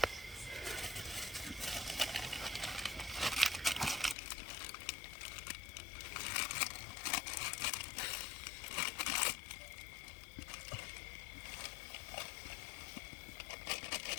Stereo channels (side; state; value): right; drops out; at 4.2 s